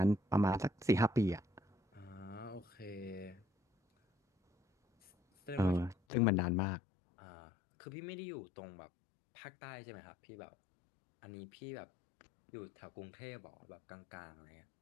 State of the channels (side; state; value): right; drops out; at 6.0 s